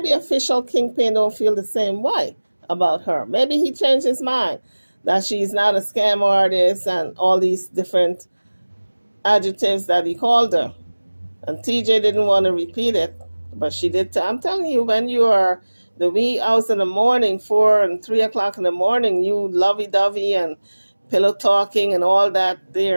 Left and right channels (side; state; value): both; inverted; correlation -1.00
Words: official Kingpin don't feel the same way about her. Maybe he changed his mind that she's not a scam artist and all these different adjectives that he called her. And TJ didn't want to repeat it, but she did. I'm telling you, when you are the wee hours in the morning, 4 and 3 o'clock in the morning, you lovey-dovey and pillow talking and all that